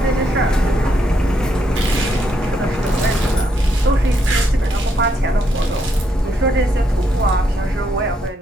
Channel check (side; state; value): both; normal; correlation 0.76